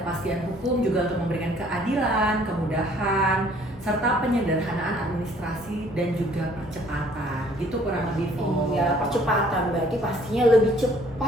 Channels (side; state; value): both; normal; correlation 0.59